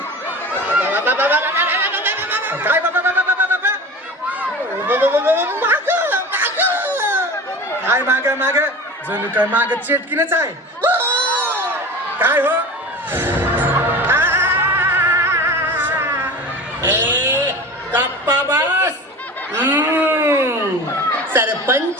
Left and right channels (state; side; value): normal; both; correlation 0.35